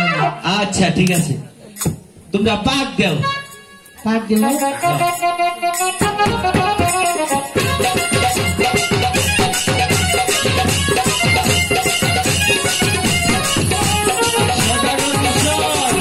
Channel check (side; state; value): both; identical; correlation 1.00